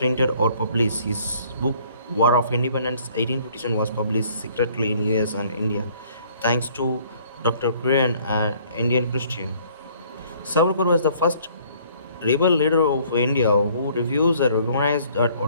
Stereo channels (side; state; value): both; inverted; correlation -0.59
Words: or published. His book War of Independence 1857 was published secretly in US and India, thanks to Dr. Korean, an Indian Christian. Savarkar was the first rebel leader of India who refused and recognized the